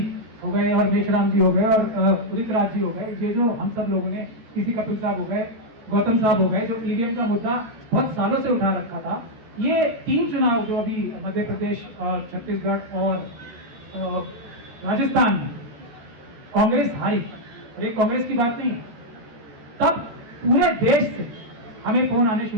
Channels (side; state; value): left; late; 13 ms